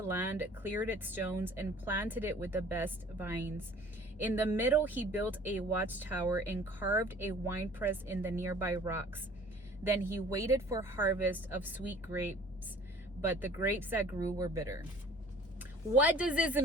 land, cleared its stones, and planted it with the best vines. In the middle he built a watchtower and carved a winepress in the nearby rocks. Then he waited for harvest of sweet grapes, but the grapes that grew were bitter." What does this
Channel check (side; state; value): both; normal; correlation 0.50